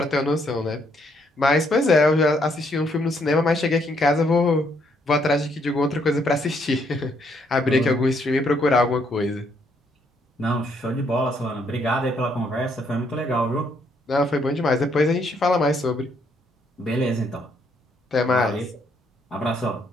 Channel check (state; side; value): normal; both; correlation 0.71